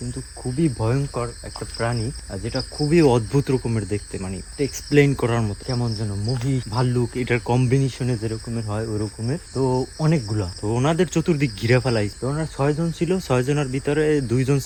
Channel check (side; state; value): both; identical; correlation 1.00